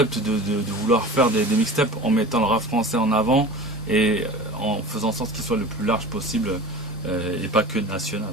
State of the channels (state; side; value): normal; both; correlation 0.37